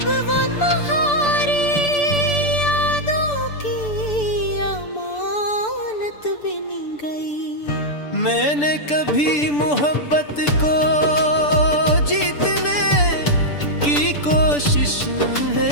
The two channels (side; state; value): right; late; 6.9 ms